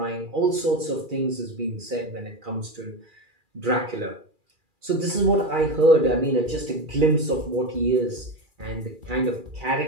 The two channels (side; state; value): left; late; 2.4 ms